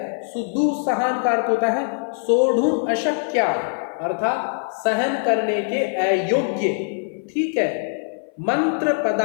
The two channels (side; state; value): right; silent; 58 dB below the other